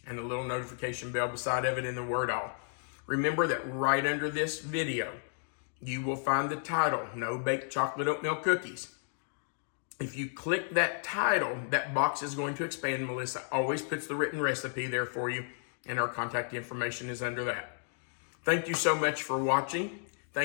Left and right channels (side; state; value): right; silent; 56 dB below the other